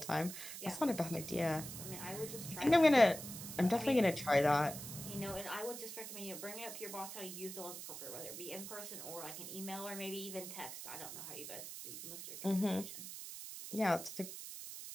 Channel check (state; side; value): noise; right; hiss, 9 dB below the sound